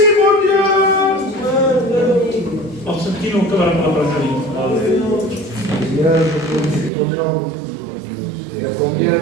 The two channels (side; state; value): left; drops out; at 6.9 s